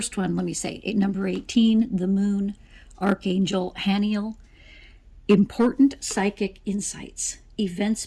one, let me say, number 18, the Moon, Archangel, Haniel. Important psychic insights, events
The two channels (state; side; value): identical; both; correlation 1.00